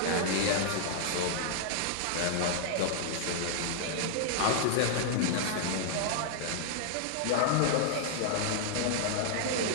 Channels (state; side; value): different; both; correlation -0.01